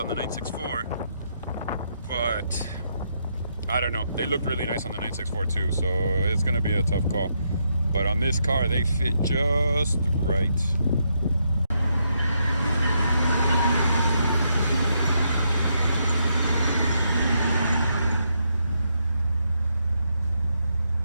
the 964, but I don't know. They looked really nice on the 964 too, so it's gonna be a tough call. But on this car, they fit just right.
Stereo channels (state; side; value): inverted; both; correlation -0.78